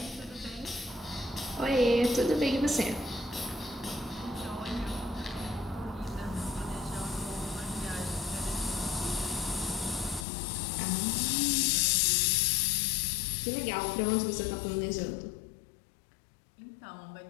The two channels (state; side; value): drops out; right; at 10.2 s